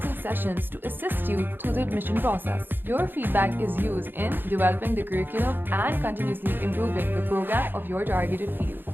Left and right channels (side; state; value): left; late; 0.096 ms